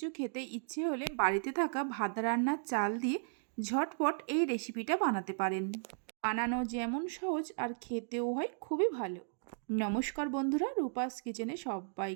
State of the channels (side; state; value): left; silent; digital silence